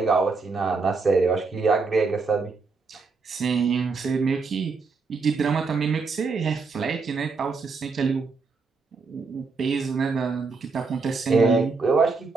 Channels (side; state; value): left; quieter; 4.4 dB